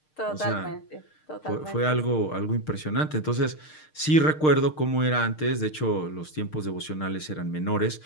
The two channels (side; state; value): right; late; 6.5 ms